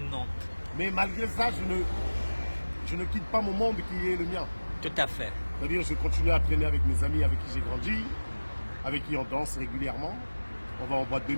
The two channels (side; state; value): both; inverted; correlation -1.00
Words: Mais malgré ça, je ne quitte pas mon monde qui est le mien. Tout à fait. C'est-à-dire, je continue à traîner avec mes amis avec qui j'ai grandi, avec qui on danse régulièrement. On va en boîte de